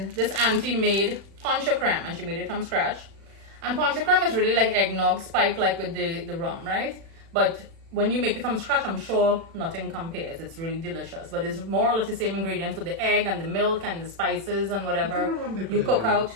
this auntie made poncha creme, and she made it from scratch. And poncha creme is really like eggnog spiked like with the rum, right? But when you make it from scratch, I'm sure nothing compares. It's really delicious. But it's more or less the same ingredients with the egg and the milk and the spices and whatever you cook out.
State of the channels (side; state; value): left; late; 36 ms